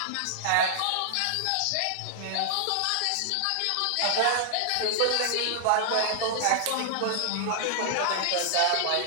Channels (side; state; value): both; different; correlation -0.01